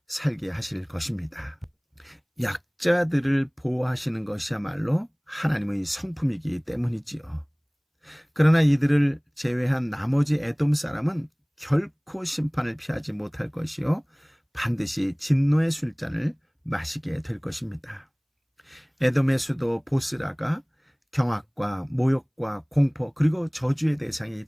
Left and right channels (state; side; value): identical; both; correlation 1.00